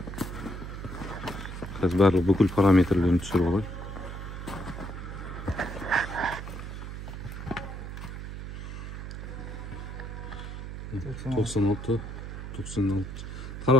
Қазір барлық бүкіл параметрлерін түсіріп алайық.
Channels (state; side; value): noise; right; hum, 8 dB below the sound